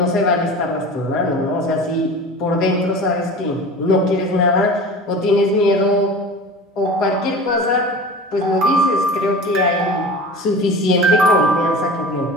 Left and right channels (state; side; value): normal; both; correlation 0.36